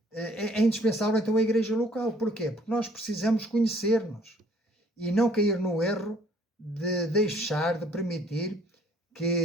é indispensável então a igreja local. Porquê? Porque nós precisamos conhecer-nos e não cair no erro de de permitir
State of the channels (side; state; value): both; normal; correlation 0.59